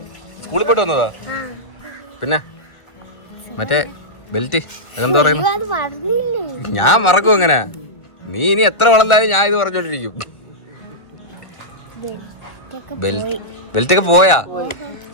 സ്കൂളിൽ പോയിട്ട് വന്നതാ. പിന്നെ മറ്റേ ബെൽറ്റ് അതെന്താ പറയുന്നു? ഞാൻ മറക്കും അങ്ങനെ. നീ ഇനി എത്ര വളർന്നാലും ഞാൻ ഇത് പറഞ്ഞോണ്ടിരിക്കും. ബെൽറ്റൊക്കെ പോയാ?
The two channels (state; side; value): late; right; 1.4 ms